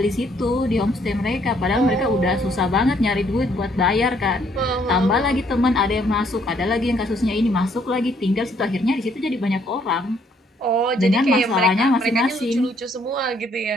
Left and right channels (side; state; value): both; normal; correlation 0.67